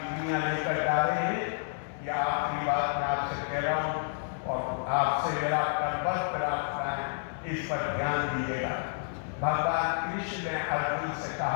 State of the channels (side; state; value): right; silent; 58 dB below the other